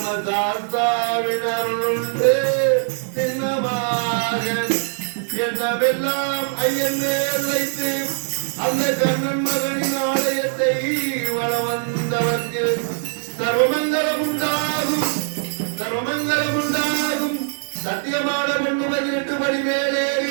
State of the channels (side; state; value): left; silent; digital silence